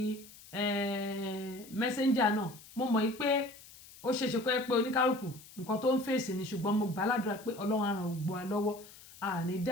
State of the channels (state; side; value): noise; left; hiss, 20 dB below the sound